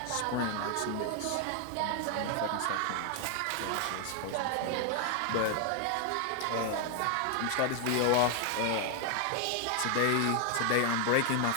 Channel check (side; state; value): both; different; correlation 0.00